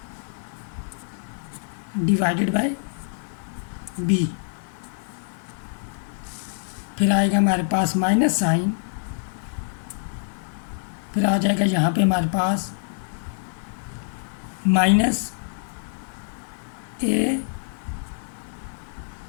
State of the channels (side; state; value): right; silent; 61 dB below the other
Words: divided by b, फिर आएगा हमारे पास माइनस साइन, फिर आ जाएगा यहाँ पे हमारे पास minus